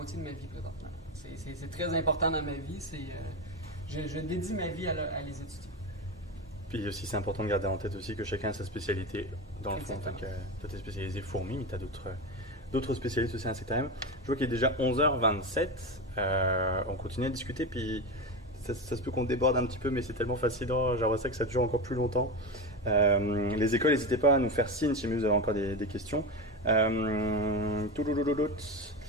de ma vie présentement. C'est très important dans ma vie. Je dédie ma vie à les étudier. Puis aussi, c'est important de garder en tête aussi que chacun a sa spécialité. Dans le fond, en tant que toi, tu es spécialisé fourmis, mais tu as d'autres spécialistes aussi à insectarium. Je vois qu'il est déjà 11h27. On continue à discuter, puis ça se peut qu'on déborde un petit peu, mais c'est tellement fascinant. J'aimerais ça que ça dure encore plus longtemps. Les écoles, n'hésitez pas à nous faire signe si vous avez encore des questions. On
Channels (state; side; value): normal; both; correlation 0.20